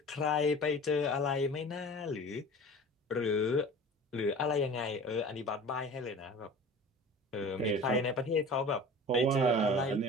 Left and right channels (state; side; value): normal; both; correlation 0.40